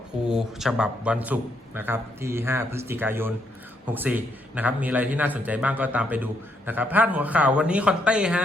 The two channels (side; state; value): both; normal; correlation 0.75